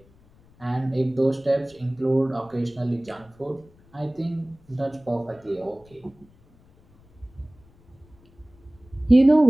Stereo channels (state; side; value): noise; left; rumble, 29 dB below the sound